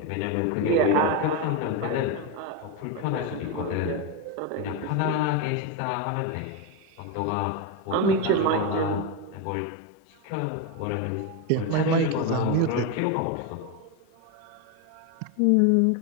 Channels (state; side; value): different; both; correlation 0.03